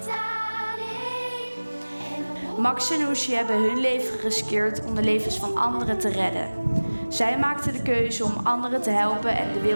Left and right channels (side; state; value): both; inverted; correlation -1.00